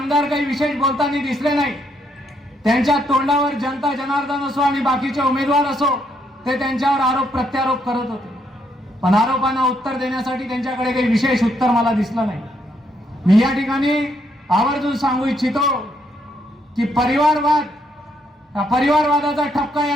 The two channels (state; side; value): normal; both; correlation 0.74